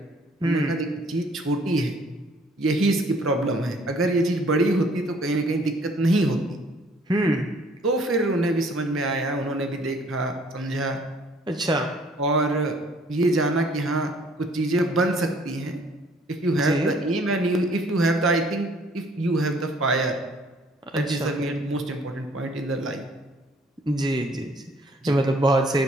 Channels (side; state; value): both; normal; correlation 0.59